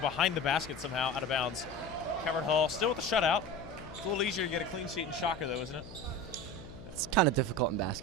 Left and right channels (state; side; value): noise; left; hum, 15 dB below the sound